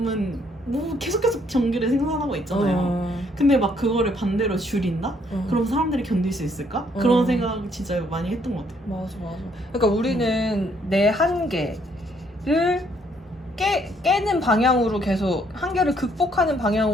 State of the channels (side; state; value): both; normal; correlation 0.68